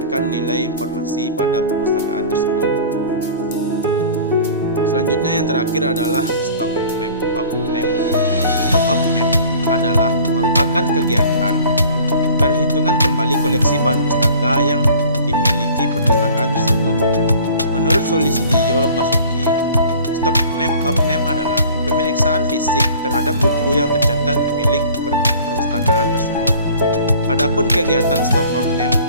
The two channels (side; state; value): both; inverted; correlation -0.46